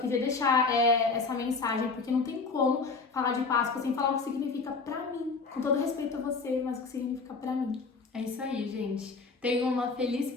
deixar essa mensagem, porque não tem como falar de Páscoa sem falar o que significa pra mim. Com todo respeito a você, mas o que significa pra mim. É isso aí, gente. Tenham uma feliz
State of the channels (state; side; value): quieter; right; 4.4 dB